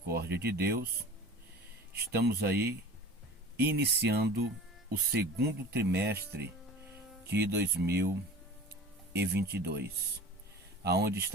de Deus, estamos aí iniciando o segundo trimestre de 2022, aonde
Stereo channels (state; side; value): normal; both; correlation 0.38